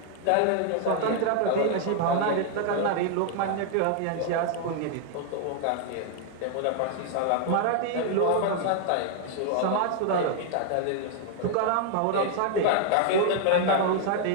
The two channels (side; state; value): both; different; correlation 0.00